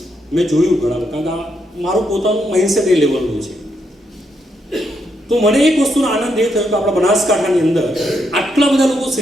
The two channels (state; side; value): normal; both; correlation 0.79